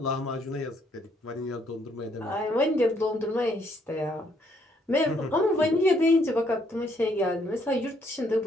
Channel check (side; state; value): both; normal; correlation 0.70